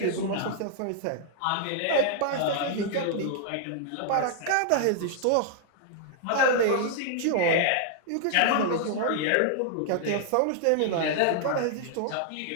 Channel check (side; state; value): both; different; correlation -0.01